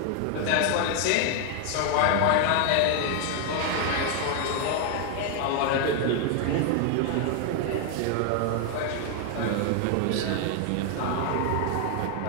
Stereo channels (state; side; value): different; both; correlation 0.00